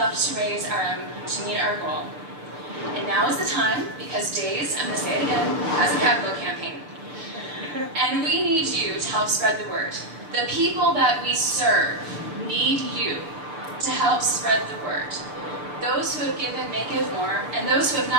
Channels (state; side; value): late; left; 6.8 ms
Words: raise to meet our goal. And now is the time, because DAIS, I'm going to say it again, has a capital campaign. And we need you to help spread the word. The people that we serve need you to help spread the word. Those who have given may give more, and those who have